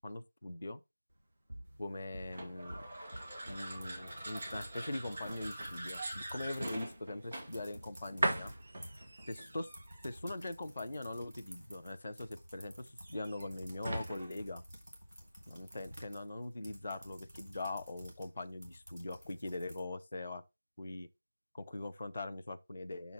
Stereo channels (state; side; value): inverted; both; correlation -0.91